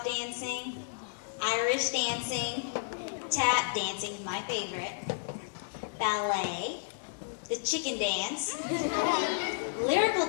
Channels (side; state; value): right; silent; 55 dB below the other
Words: dancing, Irish dancing, tap dancing, my favorite, ballet, the chicken dance, lyrical